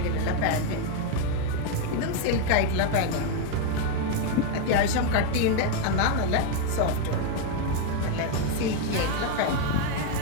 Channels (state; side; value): different; both; correlation 0.01